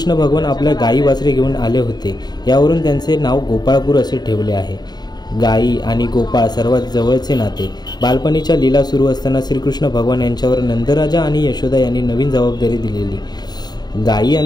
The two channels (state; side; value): late; right; 0.20 ms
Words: भगवान आपल्या गायी वासरे घेऊन आले होते. यावरून त्यांचे नाव गोपाळपूर असे ठेवले आहे. गायी आणि गोपाळ सर्वात जवळचे नाते. बालपणीच्या लीला सुरू असताना श्रीकृष्ण भगवान यांच्यावर नंदराजा आणि यशोदा यांनी नवीन जबाबदारी दिलेली. गायी